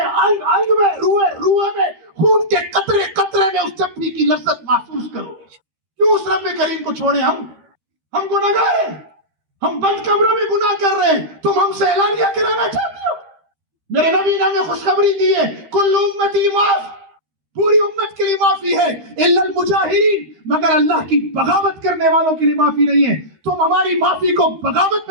انگ انگ میں، روئے روئے میں، خون کے قطرے قطرے میں اس چپڑی کی لذت محسوس کرو۔ کیوں اس رب کریم کو چھوڑے؟ ہم گناہگار ہیں، ہم بند کمروں میں گناہ کر رہے ہیں، تم ہم سے اعلانیہ کرانا چاہتے ہو؟ میرے نبی نے ہمیں خوشخبری دی ہے، کل امتی معاف، پوری امت کے لیے معافی ہے، الا المجاہرین، مگر اللہ کی بغاوت کرنے والوں کے لیے معافی نہیں ہے۔ تم ہماری معافی کو بغاوت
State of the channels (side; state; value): left; late; 13 ms